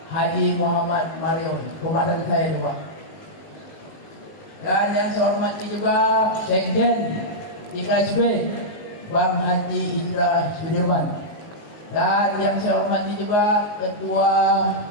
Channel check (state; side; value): late; right; 19 ms